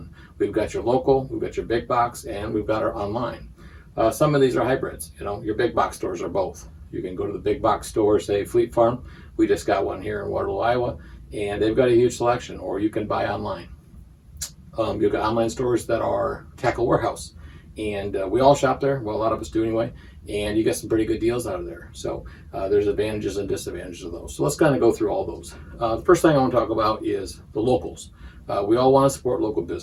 We've got your local, we've got your big box, and we've got our online. Some of these are hybrids. Your big box stores are both. You can go to the big box store, say Fleet Farm. We just got one here in Waterloo, Iowa, and they've got a huge selection, or you can buy online. You've got online stores that are Tackle Warehouse, and we all shop there. Well, a lot of us do anyway, and you get some pretty good deals out of there. So there's advantages and disadvantages of those. So let's kind of go through all those. The first thing I want to talk about is the locals. We all want to support local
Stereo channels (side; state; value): both; identical; correlation 1.00